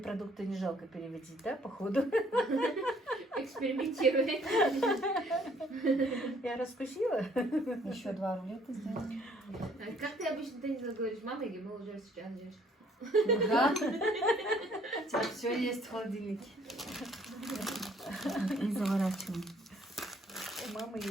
не жалко переводить, да, походу? Экспериментируй. Я раскусила. Еще 2 рулета сделаем. Как ты обычно Денису говоришь, мама, или мы уже сейчас ждешь? Да. У тебя все есть в холодильнике. И заворачиваем. У мамы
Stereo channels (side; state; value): both; normal; correlation 0.62